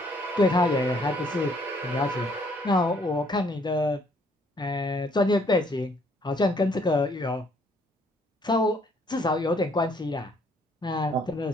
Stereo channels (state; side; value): normal; both; correlation 0.65